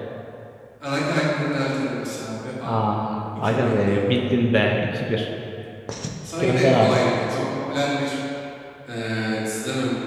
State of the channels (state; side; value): identical; both; correlation 1.00